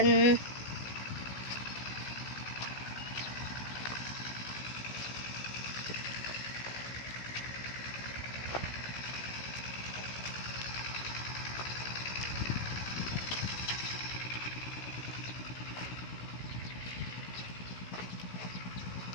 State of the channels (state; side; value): late; right; 16 ms